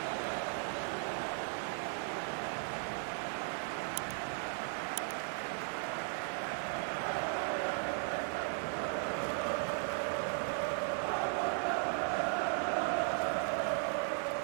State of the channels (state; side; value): silent; left; 53 dB below the other